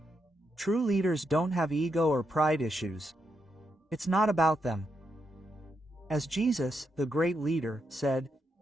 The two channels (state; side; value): normal; both; correlation 0.82